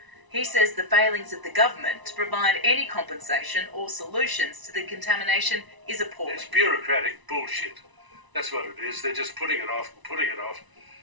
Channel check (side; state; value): left; late; 1.0 ms